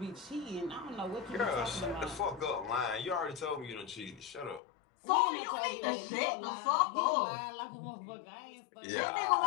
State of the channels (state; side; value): drops out; right; at 4.6 s